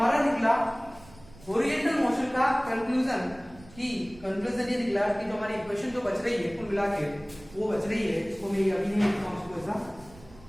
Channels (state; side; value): noise; right; rumble, 22 dB below the sound